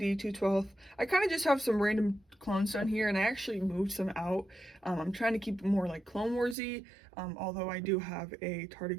212. I kind of just have some random clones down here, and I actually moved some out. I'm trying to keep it more like Clone Warsy, although I do have a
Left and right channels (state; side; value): drops out; left; at 6.6 s